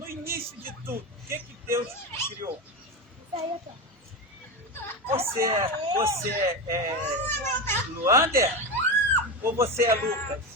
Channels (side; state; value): both; normal; correlation 0.18